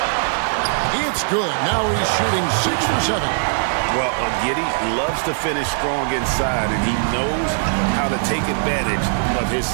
It's good. Now he's shooting 6 for 7. Well, Giddey loves to finish strong inside, and he knows how to take advantage of his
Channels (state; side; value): silent; left; digital silence